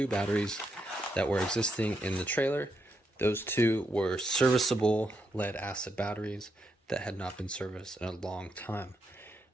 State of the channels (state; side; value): normal; both; correlation 0.81